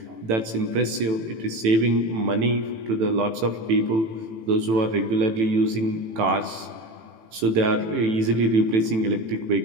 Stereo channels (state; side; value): late; left; 18 ms